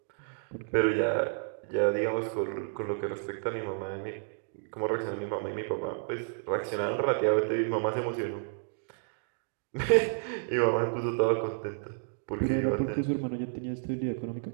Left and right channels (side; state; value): left; silent; digital silence